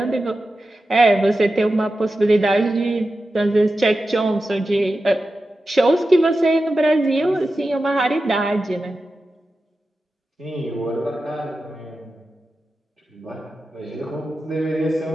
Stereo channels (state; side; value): normal; both; correlation 0.92